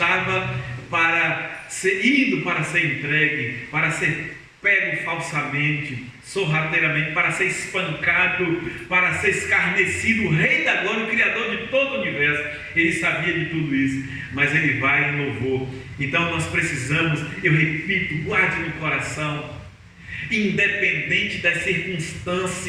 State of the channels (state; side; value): identical; both; correlation 1.00